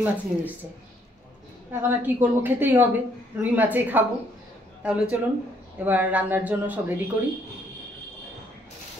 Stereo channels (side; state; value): both; normal; correlation 0.68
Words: মাছ নিয়ে এসছে। এখন আর কী করবো, খেতেই হবে, রুই মাছই খাবো। তাহলে চলুন এবার রান্নার জন্য সব রেডি করি।